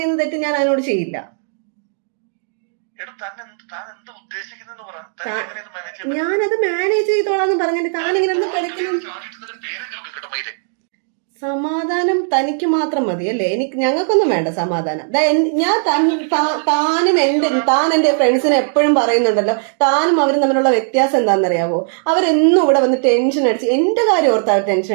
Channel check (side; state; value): left; silent; 68 dB below the other